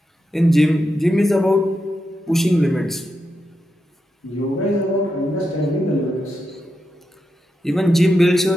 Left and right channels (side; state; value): both; normal; correlation 0.86